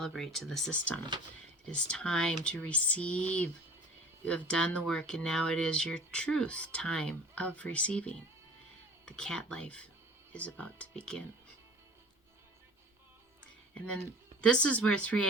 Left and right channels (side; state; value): both; normal; correlation 0.44